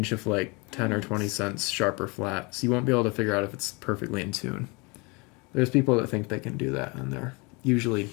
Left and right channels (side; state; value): right; quieter; 28.4 dB